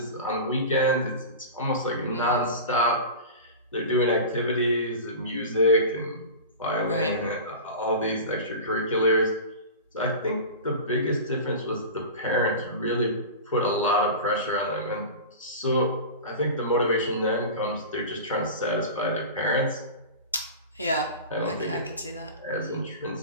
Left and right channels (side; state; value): both; inverted; correlation -0.31